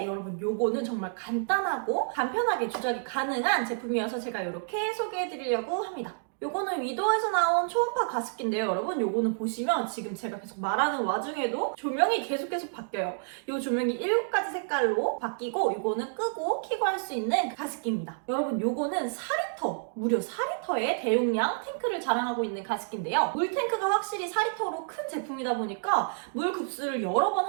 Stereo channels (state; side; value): silent; left; digital silence